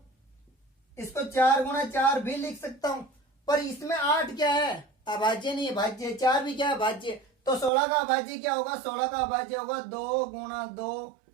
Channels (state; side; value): drops out; left; at 7.7 s